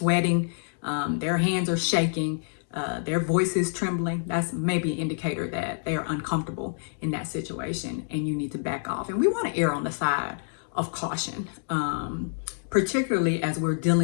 their hands are shaking, their voice is trembling, that's maybe an indicator that they are uncomfortable in that situation and you need to back off. And we want to err on the side of caution, particularly as we're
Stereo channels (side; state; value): right; silent; digital silence